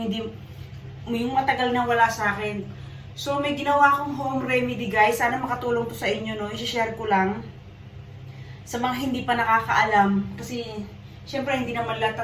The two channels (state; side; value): identical; both; correlation 1.00